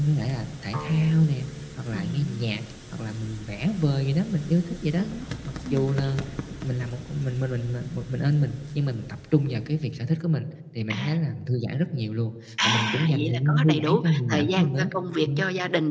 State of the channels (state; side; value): identical; both; correlation 1.00